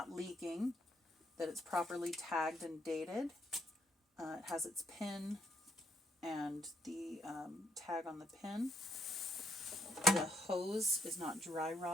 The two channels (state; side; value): normal; both; correlation 0.73